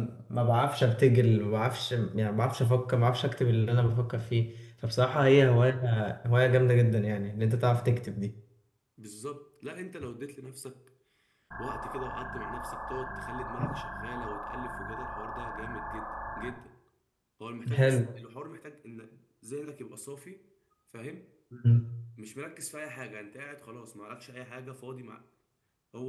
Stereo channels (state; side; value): identical; both; correlation 1.00